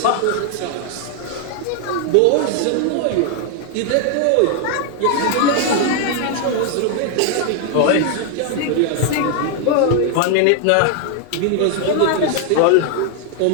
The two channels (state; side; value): different; both; correlation 0.00